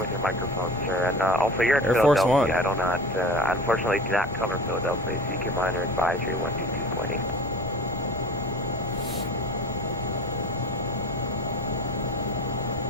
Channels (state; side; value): normal; both; correlation 0.37